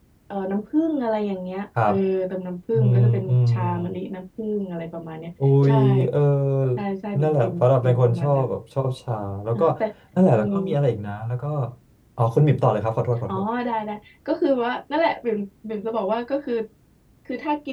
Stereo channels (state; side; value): identical; both; correlation 1.00